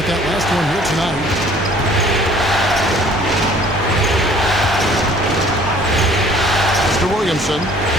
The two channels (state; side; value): normal; both; correlation 0.54